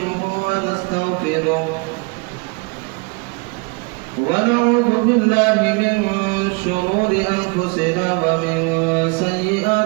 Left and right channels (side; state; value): left; quieter; 30.6 dB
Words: ونستغفره ونعوذ بالله من شرور أنفسنا ومن